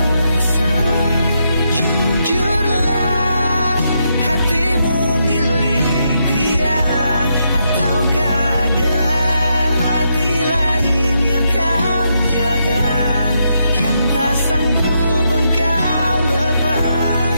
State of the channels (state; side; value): inverted; both; correlation -0.80